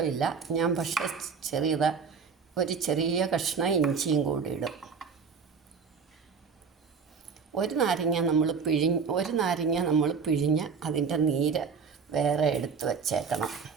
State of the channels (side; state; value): left; quieter; 5.7 dB